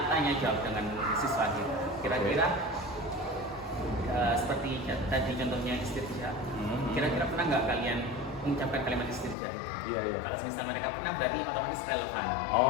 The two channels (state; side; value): drops out; right; at 9.3 s